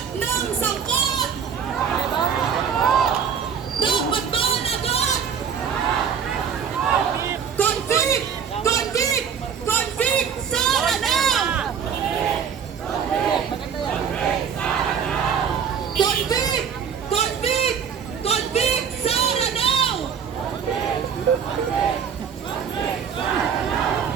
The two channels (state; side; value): quieter; left; 7.2 dB